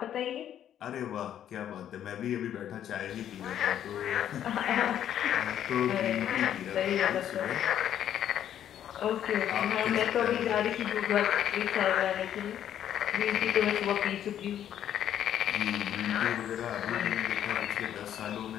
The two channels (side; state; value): right; quieter; 10.4 dB